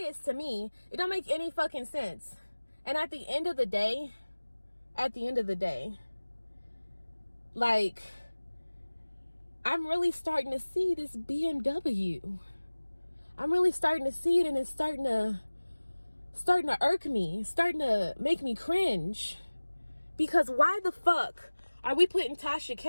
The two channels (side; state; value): both; inverted; correlation -1.00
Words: to me. It don't make any fucking sense. And at the end of the day, like, I'm really starting to see this BMW. I'm really starting to see it, and it's starting to irk me, starting to make me cringe. Because why the fuck are we putting Tasha